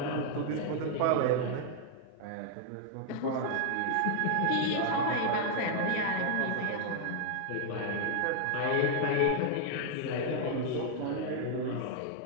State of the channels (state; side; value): different; both; correlation -0.01